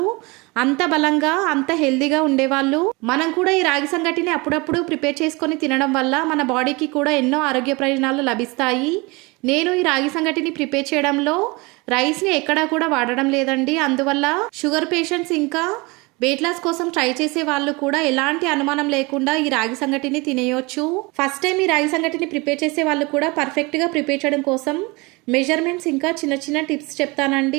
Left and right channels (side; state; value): left; quieter; 25.7 dB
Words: అంత బలంగా అంత హెల్దీగా ఉండేవాళ్ళు. మనం కూడా ఈ రాగి సంగటిని అప్పుడప్పుడు ప్రిపేర్ చేసుకొని తినడం వల్ల మన బాడీకి కూడా ఎన్నో ఆరోగ్య ప్రయోజనాలు లభిస్తాయి. నేను ఈ రాగి సంగటిని ప్రిపేర్ చేయడంలో రైస్ని ఎక్కడా కూడా వాడడం లేదండి. అందువల్ల షుగర్ పేషెంట్స్ ఇంకా వెయిట్ లాస్ కోసం ట్రై చేసే వాళ్ళు కూడా ఎలాంటి అనుమానం లేకుండా ఈ రాగి సంగటిని తినేయొచ్చు. ఫస్ట్ టైం ఈ రాగి సంగటిని ప్రిపేర్ చేసే వాళ్ళు కూడా పర్ఫెక్ట్గా ప్రిపేర్ చేయడం కోసం మెజర్మెంట్స్ ఇంకా చిన్న చిన్న టిప్స్